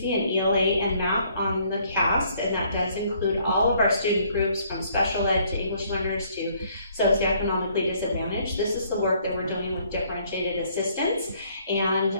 in ELA and math on the CAST, and that does include all of our student groups from special ed to English learners to socioeconomically disadvantaged. This is the work that we're doing with differentiated assistance and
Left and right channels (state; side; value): inverted; both; correlation -0.64